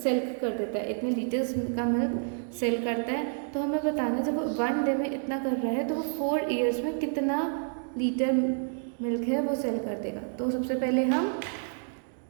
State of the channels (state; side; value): silent; left; digital silence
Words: सेल कर देता है, इतने लीटर्स का मिल्क सेल करता है. तो हमें बताना है जब वो 1 डे में इतना कर रहा है तो वो 4 ईयर्स में कितना लीटर मिल्क है वो सेल कर देगा. तो सबसे पहले हम